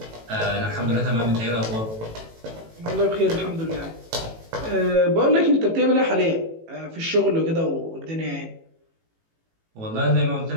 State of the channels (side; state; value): left; late; 18 ms